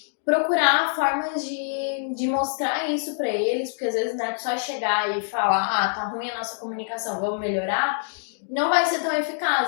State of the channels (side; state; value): right; silent; digital silence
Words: procurar formas de mostrar isso pra eles, porque às vezes não é só chegar e falar, tá ruim a nossa comunicação, vamos melhorar, não vai ser tão